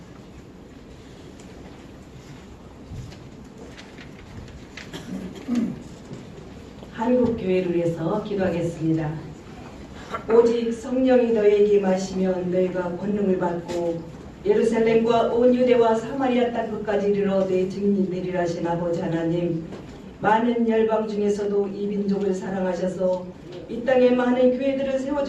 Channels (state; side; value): identical; both; correlation 1.00